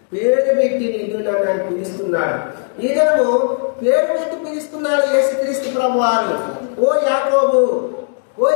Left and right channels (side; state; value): right; silent; digital silence